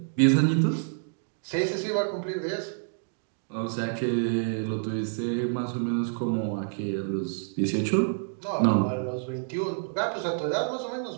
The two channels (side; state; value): left; silent; digital silence